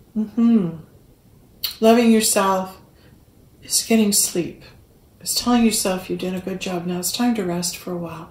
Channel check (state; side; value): identical; both; correlation 1.00